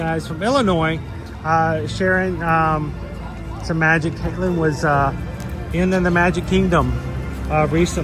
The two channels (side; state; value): both; identical; correlation 1.00